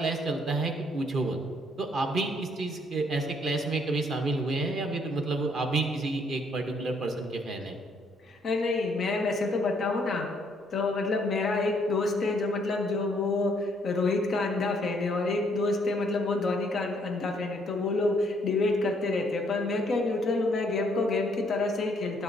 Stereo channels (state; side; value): normal; both; correlation 0.68